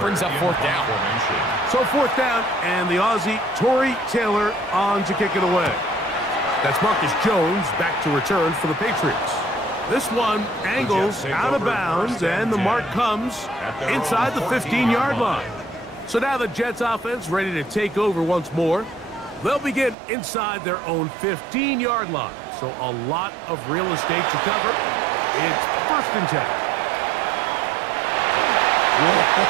brings up 4th down. So 4th down, and the Aussie, Torrey Taylor, on to kick it away. That's Marcus Jones back to return for the Patriots. This one angles out of bounds, and the mark comes inside the 15-yard line. So now the Jets offense ready to take over once more. They'll begin inside their own 15-yard line, so a lot of real estate to cover. It's 1st and 10.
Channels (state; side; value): drops out; left; at 20.0 s